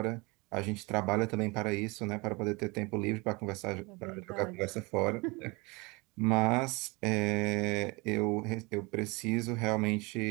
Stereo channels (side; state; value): left; quieter; 26.5 dB